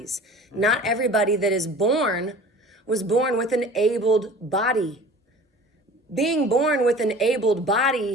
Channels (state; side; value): normal; both; correlation 0.43